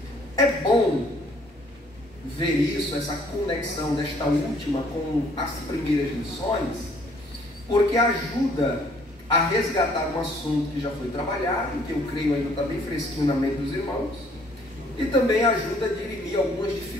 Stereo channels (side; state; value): both; normal; correlation 0.61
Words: É bom ver isso, essa conexão desta última com as primeiras lições, porque ajuda a resgatar um assunto que já foi trabalhado, que eu creio ainda está bem fresquinho na mente dos irmãos, e também ajuda a dirimir algumas